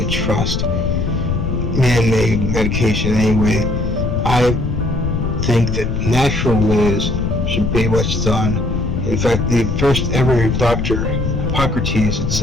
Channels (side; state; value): left; noise; rumble, 2 dB below the sound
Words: trust. Man-made medication anyway. I think that natural ways should be what's done. In fact, the first ever doctor, Hippocrates, had